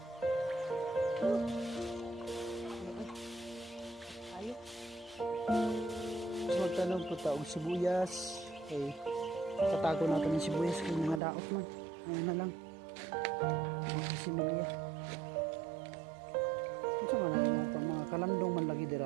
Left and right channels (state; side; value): drops out; left; at 11.2 s